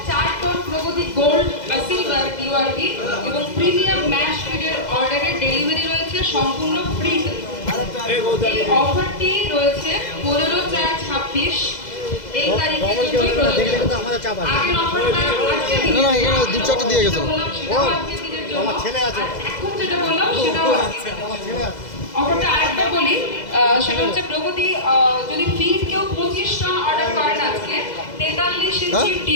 4 টন প্রগতি গোল্ড বা সিলভার ডিআরবি এবং প্রিমিয়াম ম্যাশ ফিডের অর্ডারের ডেলিভারি রয়েছে সম্পূর্ণ ফ্রি। এই অফারটি রয়েছে 15/4/26 এই তারিখে আগের অফারটা আজকে দিয়ে গেছে আমার ছেলে আছে। এখন যেটা বললাম সেটা অফারটা আরেকবার বলি, সেটা হচ্ছে প্রগতি যদি ফিড কেউ 25 টন অর্ডার করেন আজকে 43 ইঞ্চি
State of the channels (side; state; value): right; late; 2.0 ms